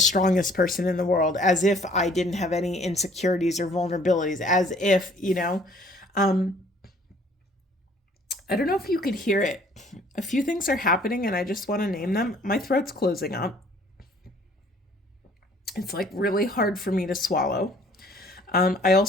person in the world, as if I didn't have any insecurities or vulnerabilities, as if, I don't know if you could hear it. A few things are happening and I just want to name them. My throat's closing up. It's like really hard for me to swallow. I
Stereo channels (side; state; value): both; normal; correlation 0.57